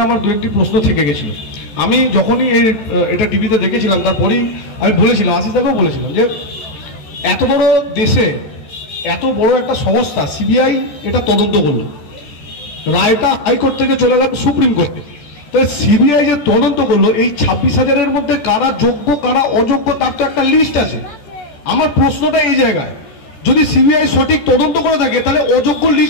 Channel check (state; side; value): late; right; 14 ms